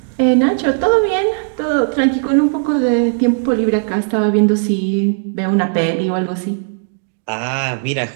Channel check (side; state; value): left; silent; digital silence